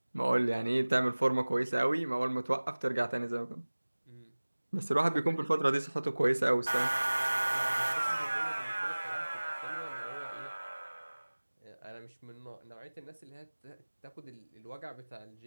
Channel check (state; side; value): inverted; both; correlation -1.00